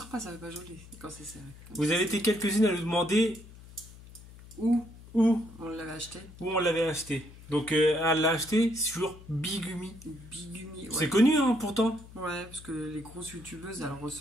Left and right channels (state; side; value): noise; left; hum, 19 dB below the sound